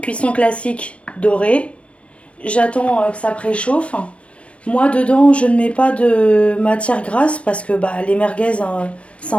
cuisson classique dorée. J'attends que ça préchauffe. Moi dedans je ne mets pas de matière grasse parce que les merguez ça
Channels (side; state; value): right; late; 0.061 ms